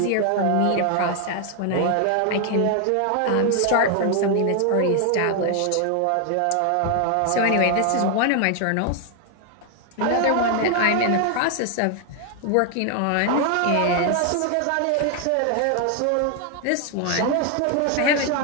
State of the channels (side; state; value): both; different; correlation 0.00